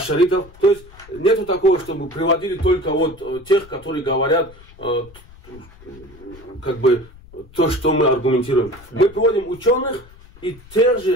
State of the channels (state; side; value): noise; left; rumble, 22 dB below the sound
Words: То есть нету такого, чтобы приводили только вот тех, которые говорят как бы то, что мы аргументируем. Мы приводим ученых и тех